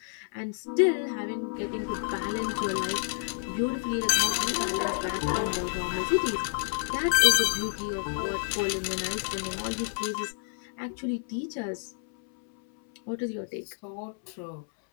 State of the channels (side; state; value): right; silent; 58 dB below the other